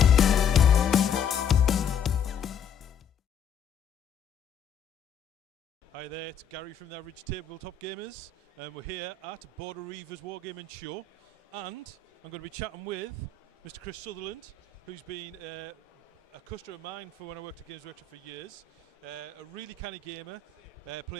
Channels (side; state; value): right; quieter; 6.7 dB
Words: Hi there, it's Gary from the Average Tabletop Gamers, and we're here at Border Reivers Wargames Show, and I'm going to be chatting with Mr. Chris Sutherland, who's been a customer of mine for when I worked at Games Workshop for years. A really canny gamer,